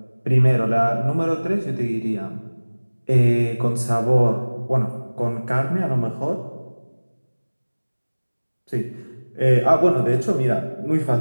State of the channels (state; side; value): inverted; both; correlation -1.00